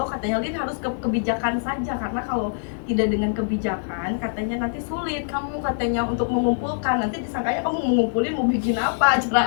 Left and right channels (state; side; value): silent; right; digital silence